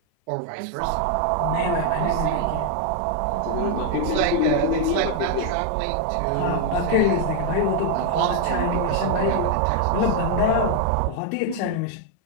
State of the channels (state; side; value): different; both; correlation 0.00